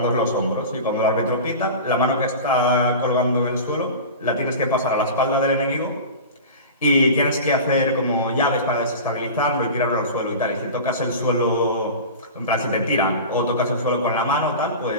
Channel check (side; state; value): both; inverted; correlation -0.32